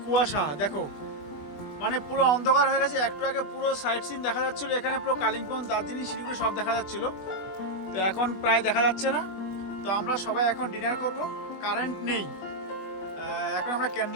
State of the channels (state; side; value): late; right; 20 ms